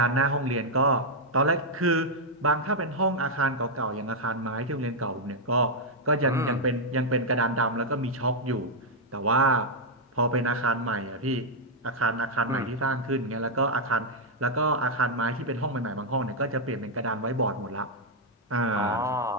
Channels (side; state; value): both; normal; correlation -0.03